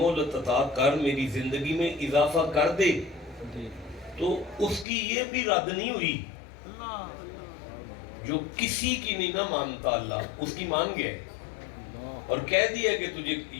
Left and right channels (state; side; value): drops out; right; at 4.9 s